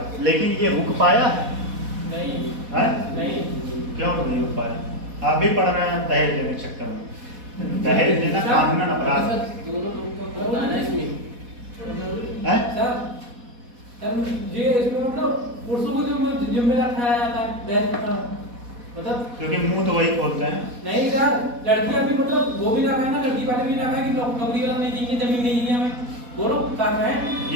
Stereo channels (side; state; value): left; late; 4.1 ms